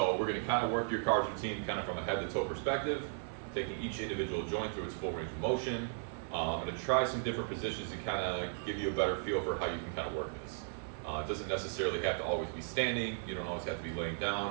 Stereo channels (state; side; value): silent; left; 54 dB below the other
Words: we're gonna kind of work your car's routine kind of from a head to toe perspective, taking each individual joint through its full range of motion. I'm gonna try some different positions to kind of give you a better feel for how you can kind of work this. It doesn't necessarily have to always be standing, you don't always have to be laying